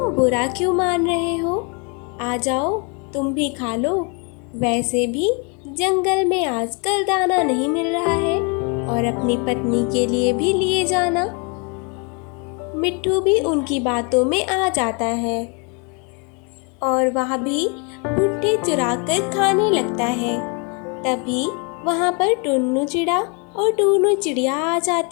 बुरा क्यों मान रहे हो? आ जाओ, तुम भी खा लो। वैसे भी जंगल में आजकल दाना नहीं मिल रहा है और अपनी पत्नी के लिए भी लिए जाना। मिट्ठू भी उनकी बातों में आ जाता है और वह भी भुट्टे चुरा कर खाने लगता है। तभी वहाँ पर टुन्नू चिड़ा और टूनू चिड़िया आ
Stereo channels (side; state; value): right; quieter; 34.5 dB